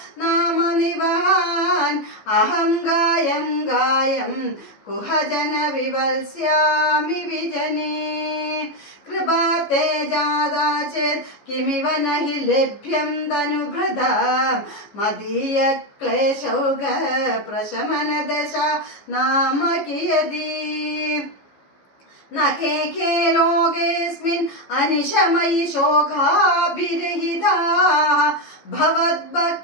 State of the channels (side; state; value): right; late; 15 ms